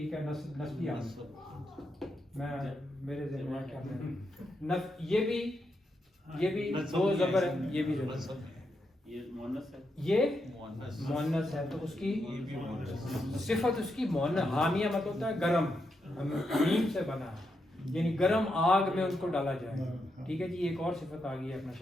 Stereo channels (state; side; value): normal; both; correlation 0.83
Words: ہے. نصبی میں میرے ذہن میں کیا یہ بھی دو زبر ہے. یہ بھی یہ مؤنث ہے، یہ مؤنث ہے. تو اس کی صفت اس کی مؤنث. حامیہ مطلب ہوتا ہے گرم، حمیم سے بنا ہے، یعنی گرم آگ میں ان کو ڈالا جائے. ٹھیک ہے جی. ایک اور صفت آ گئی ہے اپنا